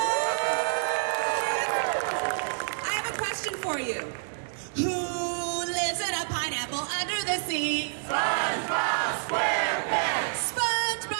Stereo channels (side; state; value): left; silent; digital silence